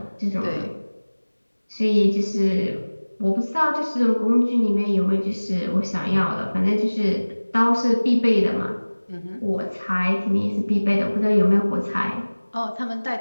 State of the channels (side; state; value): both; inverted; correlation -1.00